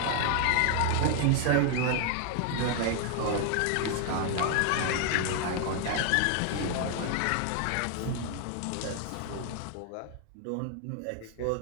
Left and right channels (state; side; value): different; both; correlation 0.00